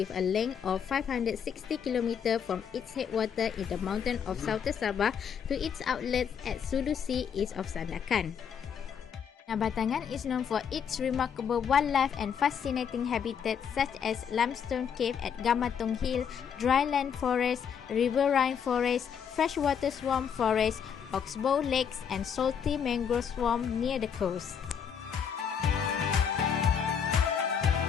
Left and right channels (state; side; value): quieter; right; 7.6 dB